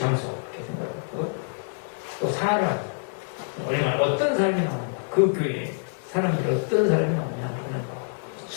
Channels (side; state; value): right; silent; digital silence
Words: 이렇게 생각하고 또 사람, 얼마나 어떤 사람이 나오냐, 그 교회에 사람들이 어떤 사람이 나오냐 하는 거.